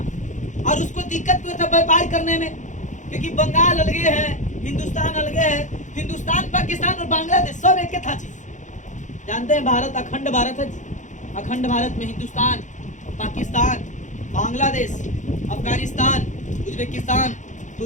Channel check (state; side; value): late; right; 0.36 ms